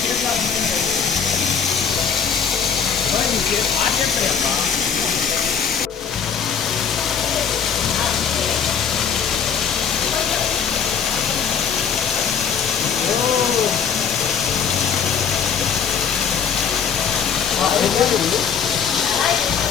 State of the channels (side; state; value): right; quieter; 7.0 dB